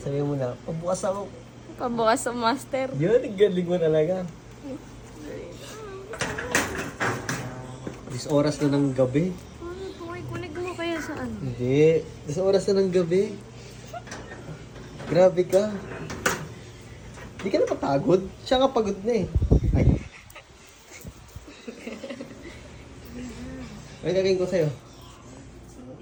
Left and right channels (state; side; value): identical; both; correlation 1.00